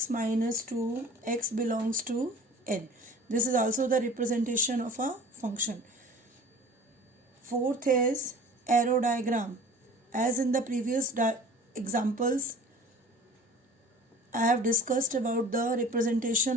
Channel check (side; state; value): both; normal; correlation 0.44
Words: minus 2, x belongs to n. This is also the representation of a function. Fourth is arrow diagram. As in the previous examples, I have discussed about the